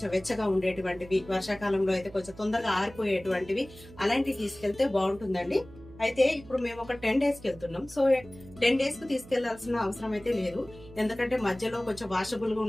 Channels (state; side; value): noise; right; hum, 19 dB below the sound